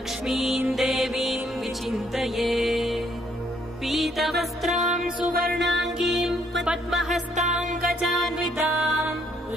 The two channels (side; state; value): both; normal; correlation 0.68